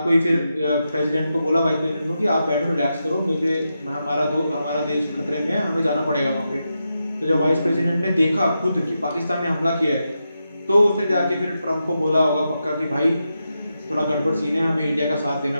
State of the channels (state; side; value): inverted; both; correlation -0.87